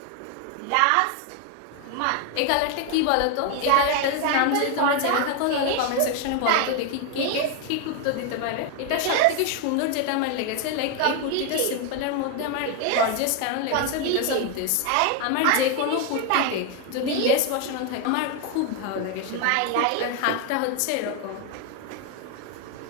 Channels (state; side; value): different; both; correlation 0.01